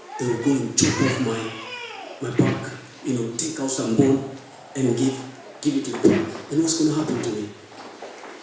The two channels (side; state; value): both; identical; correlation 1.00